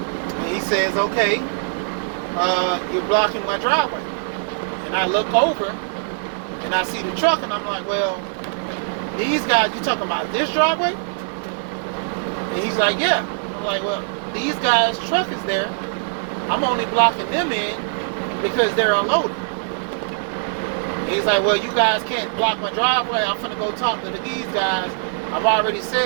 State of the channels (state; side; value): silent; left; 63 dB below the other